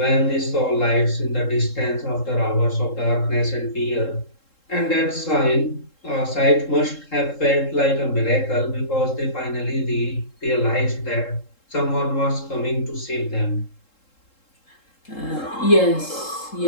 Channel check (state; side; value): late; right; 3.7 ms